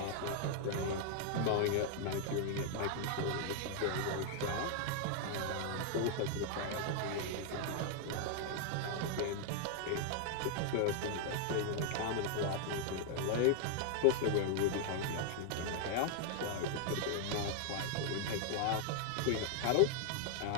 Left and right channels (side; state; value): both; different; correlation 0.00